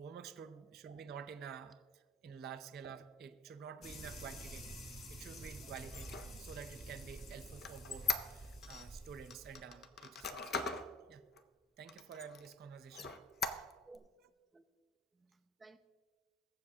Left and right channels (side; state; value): both; normal; correlation 0.51